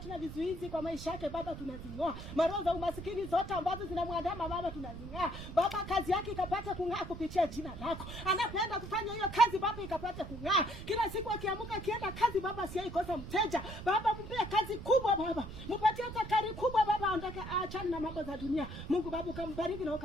na vizuizi kwa maisha yake Baba tunazing'oa. Maroho za umasikini zote ambazo zinamwandama Baba tunazing'oa. Baba kazi yake ikapata kung'aa kupitia jina lako. Anapenda kufanya hiyo kazi Baba ikapata kung'aa. Kila siku akiamka akienda kazi Baba asiyeikosa mteja. Baba mpe kazi kubwa Baba. Mpatie takari kubwa Baba, aondoke aachane na mambo za dunia. Mungu Baba ukambariki na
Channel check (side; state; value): right; noise; rumble, 10 dB below the sound